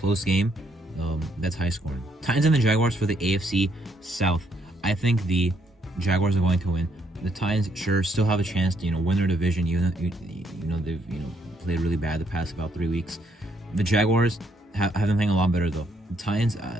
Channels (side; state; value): both; normal; correlation 0.72